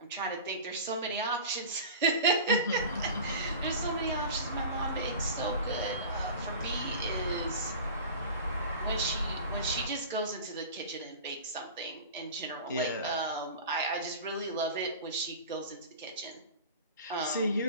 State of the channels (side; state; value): both; inverted; correlation -0.36